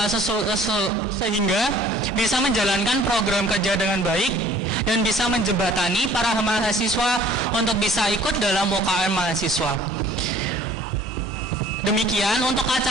sehingga bisa menjalankan program kerja dengan baik dan bisa menjembatani para mahasiswa untuk bisa ikut dalam UKM mahasiswa. Demikian untuk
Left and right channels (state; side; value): normal; both; correlation 0.53